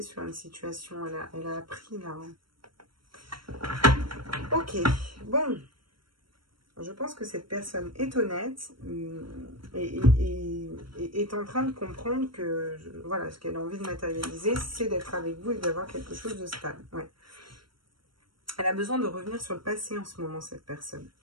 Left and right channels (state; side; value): late; left; 0.73 ms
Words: sur une situation. Elle a appris, là. Ok, bon. Je pense que cette personne est honnête et est en train de comprendre que, voilà, ce qu'elle a envie de matérialiser, c'est d'être avec vous et d'avoir quelque chose de stable. Ouais. Elle a besoin de revenir sur le passé en ce moment, cette personne.